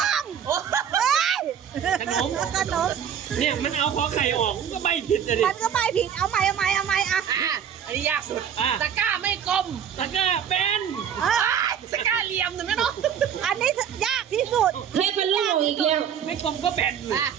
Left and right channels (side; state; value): left; quieter; 8.5 dB